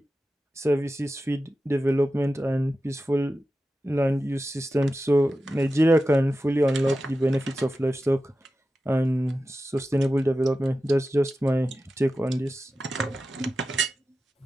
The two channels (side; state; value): both; normal; correlation 0.93